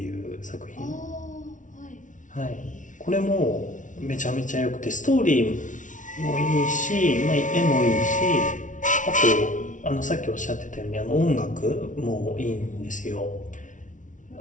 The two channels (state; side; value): late; right; 0.37 ms